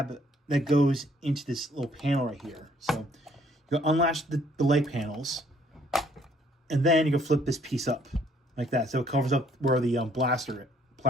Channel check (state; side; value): normal; both; correlation 0.63